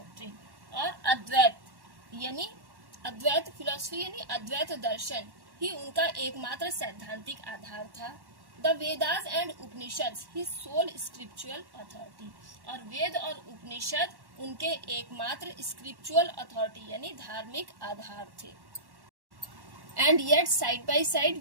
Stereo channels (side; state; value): left; late; 1.1 ms